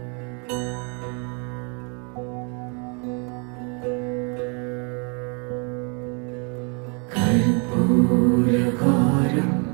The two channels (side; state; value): left; quieter; 36.4 dB